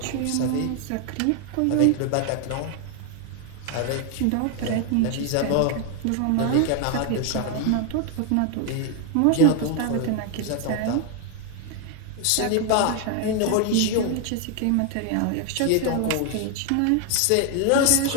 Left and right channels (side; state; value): both; different; correlation 0.00